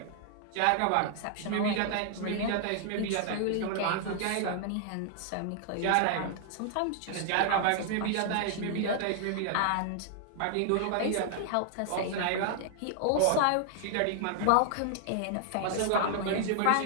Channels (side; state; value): both; different; correlation -0.01